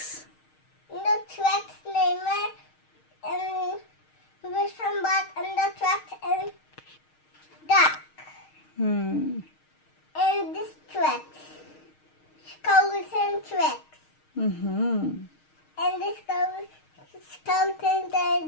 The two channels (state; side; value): late; right; 6.4 ms